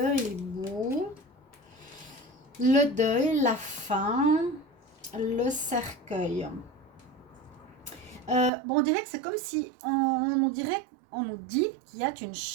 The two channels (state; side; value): drops out; left; at 8.5 s